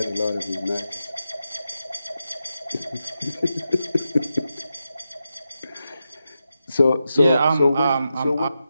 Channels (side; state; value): both; inverted; correlation -0.88